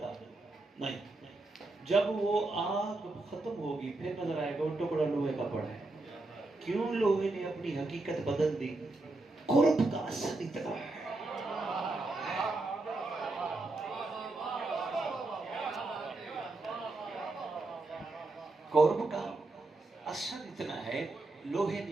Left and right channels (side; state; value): left; quieter; 3.1 dB